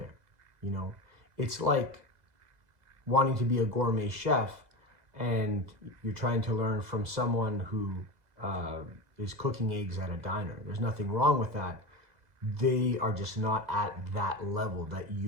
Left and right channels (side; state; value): left; late; 2.0 ms